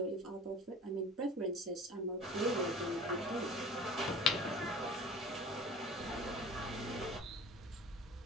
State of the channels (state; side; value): normal; both; correlation 0.42